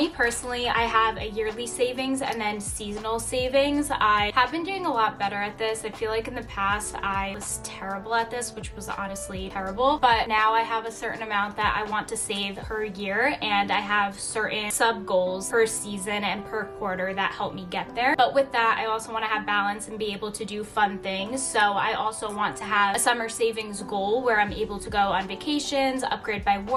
personally, I have a yearly savings and then seasonal savings. I have been doing a lot better at this. I feel like in the past I was terrible at this, which was honestly terrible, but now I have a certain amount that I want to save per year, and I have certain sub goals per season and per quarter that help me get there. But with that, I also want to have balance and be able to do fun things. So I also want to have a summer savings goal where I'm able to go on vacations, upgrade my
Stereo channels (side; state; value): both; identical; correlation 1.00